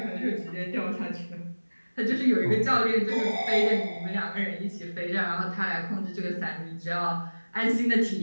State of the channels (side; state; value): both; inverted; correlation -1.00